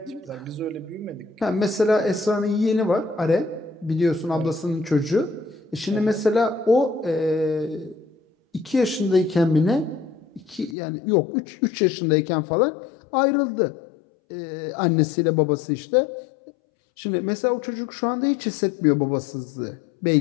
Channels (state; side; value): drops out; right; at 10.8 s